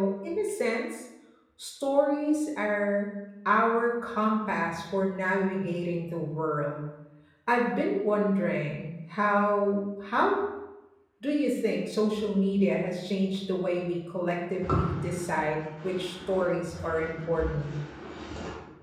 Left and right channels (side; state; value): both; identical; correlation 1.00